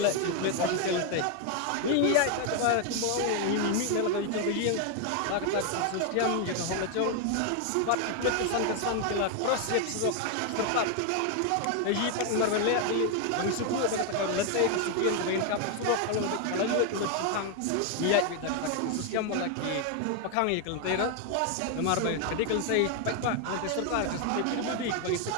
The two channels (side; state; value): both; different; correlation 0.01